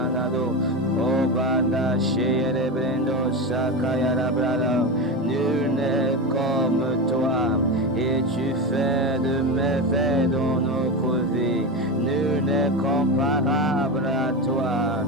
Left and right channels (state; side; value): normal; both; correlation 0.18